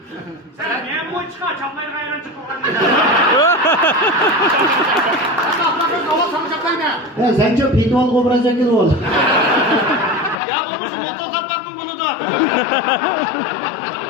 Sen niye boy çıkar? Çaplayı gayran çıkar. Sen ahlakın hava sanacaklar ne? Ya sen çok pitbull kobracak gibi ol. Ya olmuş motor kaplardım bunu da.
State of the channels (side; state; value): right; drops out; at 10.4 s